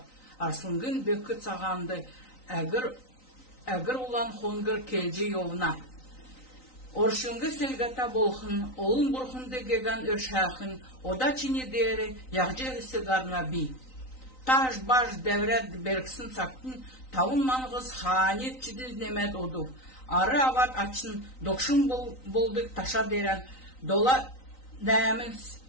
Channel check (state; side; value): late; right; 3.9 ms